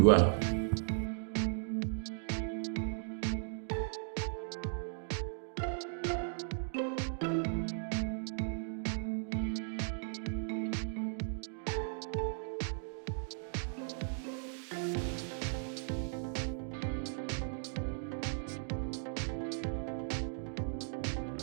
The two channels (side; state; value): left; silent; digital silence